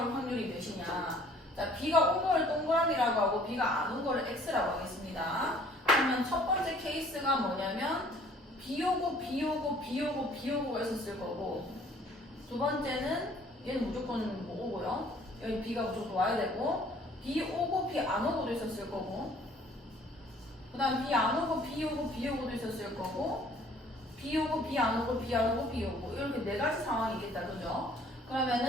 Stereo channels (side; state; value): both; normal; correlation 0.57